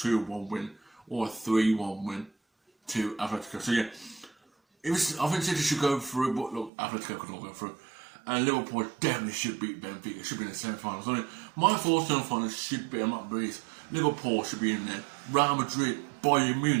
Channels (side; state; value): left; drops out; at 6.7 s